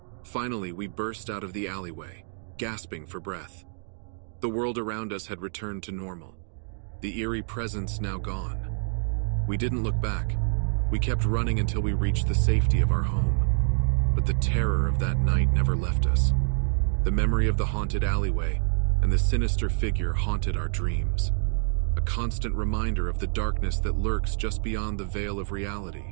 Finally, we burst out of the alleyway, gasping for breath. The world around us had returned to normal, the eerie presence now gone. We didn't look back. We kept running until we reached the safety of our home. But the terror of that night never left us. The memory of the haunted alleyway and the sinister figure haunted our dreams, a constant reminder of the darkness that lurks just beyond the veil of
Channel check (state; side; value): silent; left; 60 dB below the other